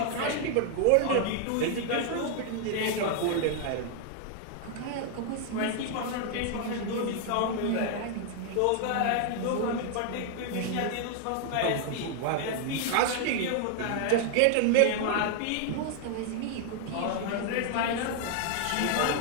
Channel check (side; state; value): both; different; correlation 0.00